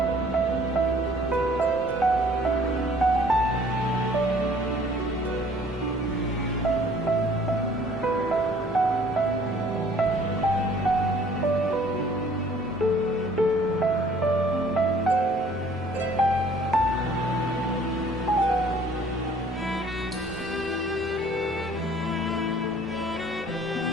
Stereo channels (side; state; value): both; normal; correlation 0.56